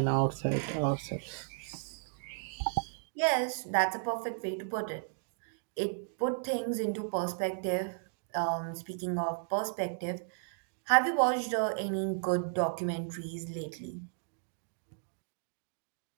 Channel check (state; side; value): silent; left; digital silence